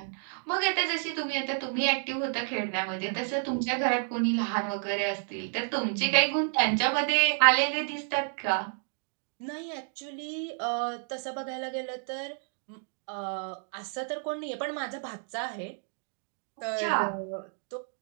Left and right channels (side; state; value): left; silent; 58 dB below the other